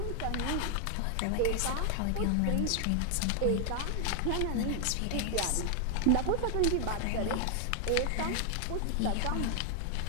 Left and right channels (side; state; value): both; different; correlation 0.00